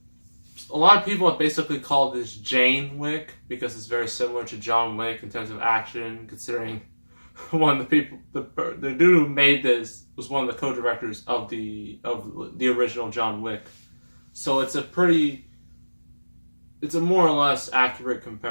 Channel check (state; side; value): inverted; both; correlation -1.00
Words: A lot of people have basically called this Jane Wick because it's very similar to John Wick in terms of action, considering one of the people, the dude who made this was one of the co-directors of the original John Wick. So it's a more or less accurate